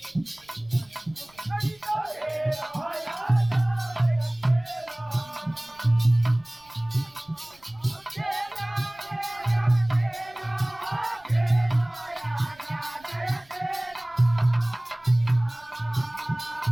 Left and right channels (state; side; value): noise; right; rumble, 29 dB below the sound